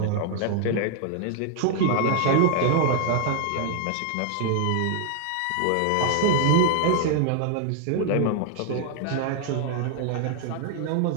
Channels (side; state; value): both; different; correlation 0.00